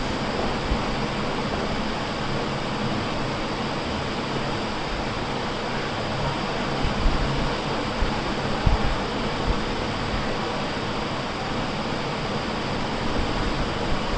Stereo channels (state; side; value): identical; both; correlation 1.00